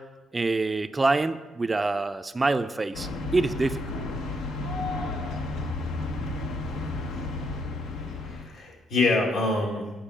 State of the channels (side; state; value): both; normal; correlation 0.77